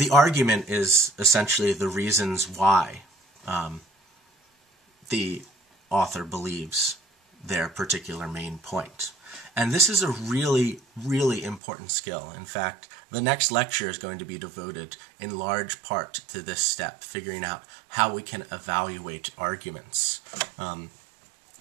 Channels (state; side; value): drops out; left; at 11.6 s